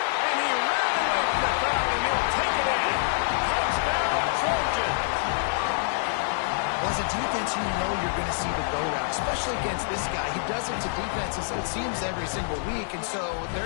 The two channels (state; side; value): silent; right; digital silence